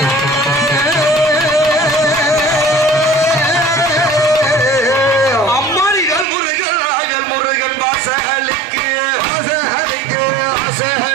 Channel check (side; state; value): left; drops out; at 6.2 s